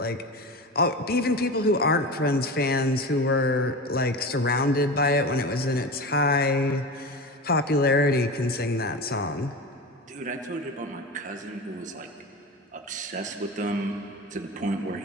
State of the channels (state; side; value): normal; both; correlation 0.27